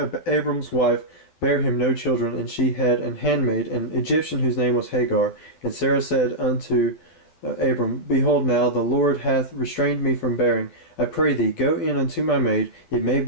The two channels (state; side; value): late; right; 12 ms